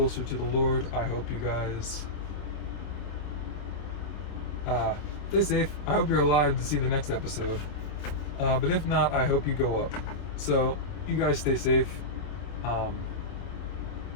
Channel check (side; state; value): right; late; 27 ms